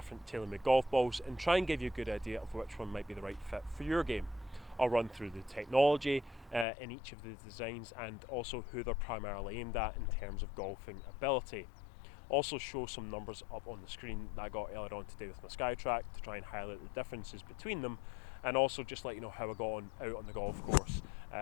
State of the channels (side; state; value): right; drops out; at 6.7 s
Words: TaylorMade golf balls and try and give you a good idea of which one might be the right fit for your game. I'll run through the technology in each of the designs and also who they're primarily aimed at in terms of golfing ability. Also show some numbers up on the screen that I got earlier on today with my SkyTrack to try and highlight the differences between them, and also just let you know how I got on out on the golf course.